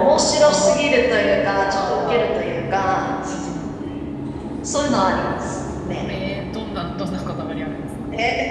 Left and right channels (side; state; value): both; identical; correlation 1.00